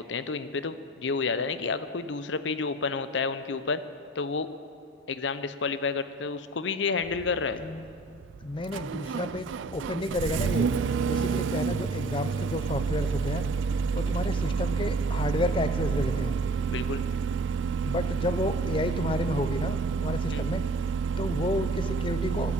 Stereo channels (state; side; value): normal; both; correlation 0.46